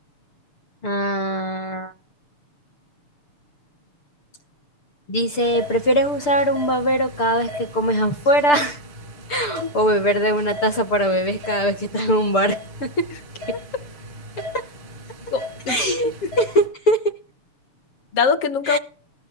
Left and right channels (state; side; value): late; right; 6.8 ms